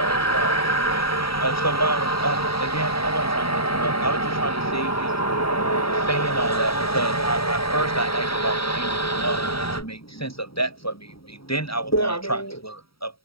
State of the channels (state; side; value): late; right; 0.75 ms